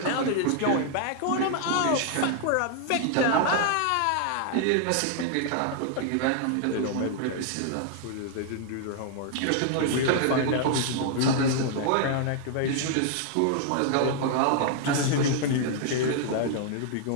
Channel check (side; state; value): both; different; correlation 0.00